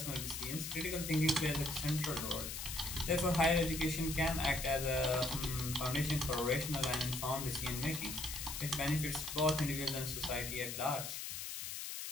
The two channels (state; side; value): noise; left; hiss, 5 dB below the sound